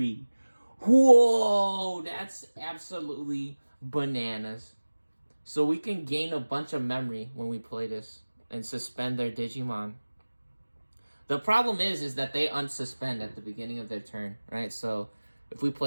Whoa, that's absolutely bananas. So we can gain a bunch of memory when we play this and suspend their Digimon. The problem is that they unsuspend at the beginning of their turn, right? So if we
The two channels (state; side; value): inverted; both; correlation -1.00